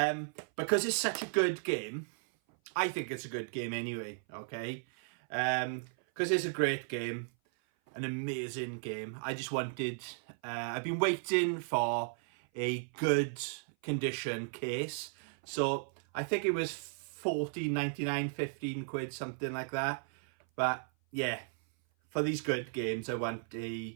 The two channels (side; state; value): left; silent; 54 dB below the other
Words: it's such a good game, I think it's a good game anyway, okay? Because it's a great game, an amazing game. I just wanted, I've been waiting for a good condition case. So I think it was 14.99, 15 quid, something like that. But yeah, for these good games, I want